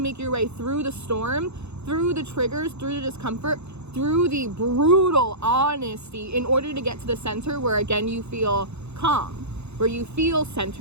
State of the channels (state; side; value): late; left; 0.80 ms